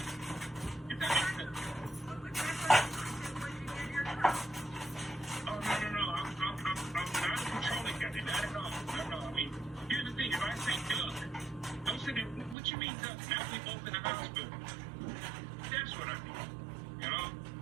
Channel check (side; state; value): left; drops out; at 12.6 s